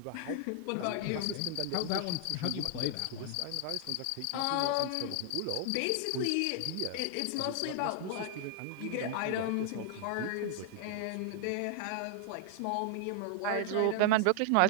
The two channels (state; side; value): different; both; correlation 0.00